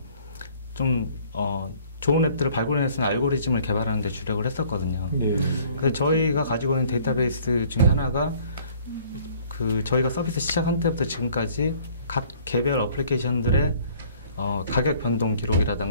좀 좋은 앱들을 발굴해낼 수 있는 알고리즘을 개발하는 데 주력을 했었거든요. 그래서 저희가 가지고 있는 데이터베이스 중에 하나가 저희가 서비스 시작한 때부터 지금까지 각 개별 어플리케이션들의 가격 변동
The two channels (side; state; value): both; inverted; correlation -0.56